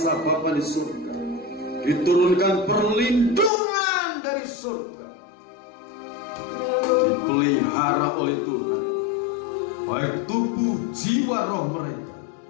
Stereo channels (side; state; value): right; drops out; at 3.5 s